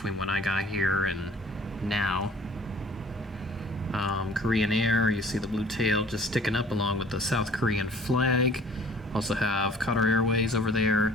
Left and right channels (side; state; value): both; normal; correlation 0.52